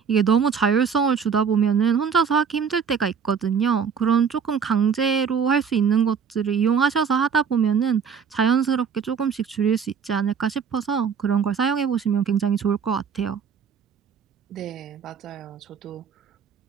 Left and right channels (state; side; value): quieter; left; 6.6 dB